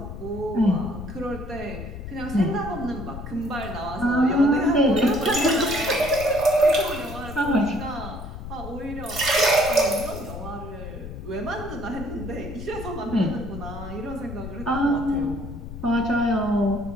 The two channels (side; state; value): left; noise; rumble, 10 dB below the sound